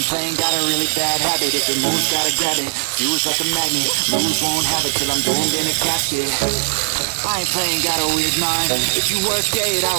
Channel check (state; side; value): silent; left; digital silence